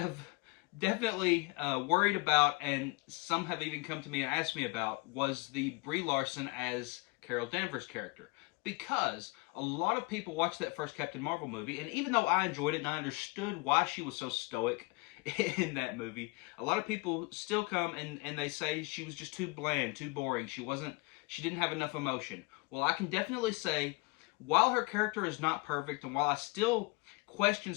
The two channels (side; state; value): right; quieter; 26.6 dB